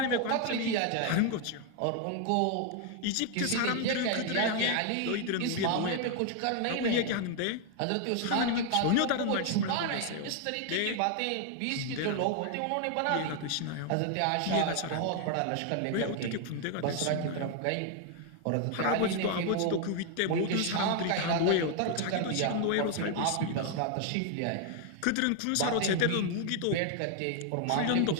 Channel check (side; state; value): both; different; correlation 0.00